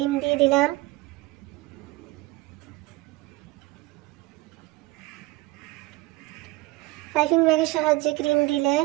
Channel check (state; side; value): quieter; left; 20.4 dB